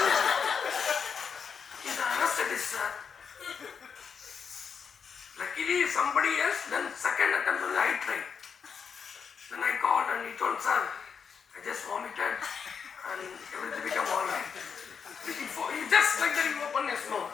He's an anesthetist, sir. Luckily, somebody else, then second attempt only I tried. Then I called and he told, sir, I just vomited and everything became alright. He just like that, he opened his mouth.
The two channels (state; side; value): quieter; right; 6.4 dB